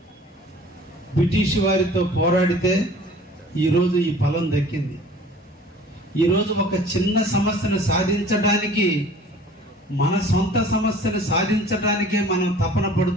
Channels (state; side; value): normal; both; correlation 0.48